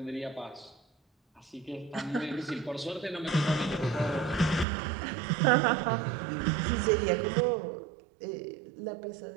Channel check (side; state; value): left; drops out; at 4.7 s